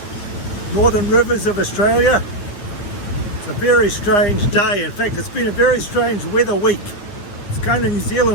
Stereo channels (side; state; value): right; late; 9.9 ms